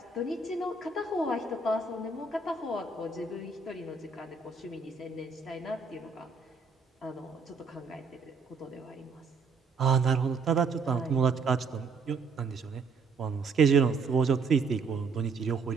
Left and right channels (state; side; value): quieter; left; 4.5 dB